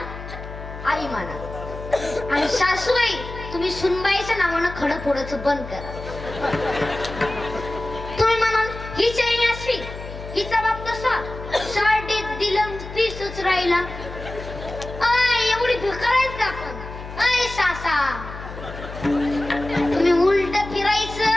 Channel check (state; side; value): noise; left; hum, 11 dB below the sound